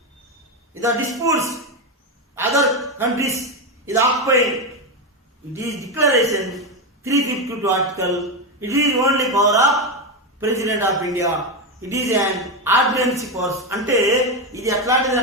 the disputes other countries is occupying. It is declaration 352 article. It is only power of President of India. It is an ordinance force. అంటే ఇది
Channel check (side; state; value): both; normal; correlation 0.11